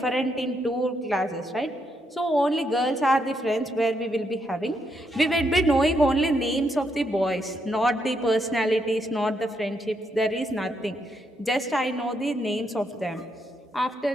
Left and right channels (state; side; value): normal; both; correlation 0.78